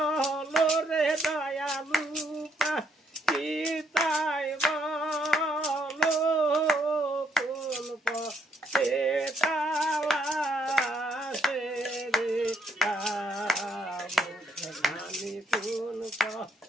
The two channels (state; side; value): normal; both; correlation 0.72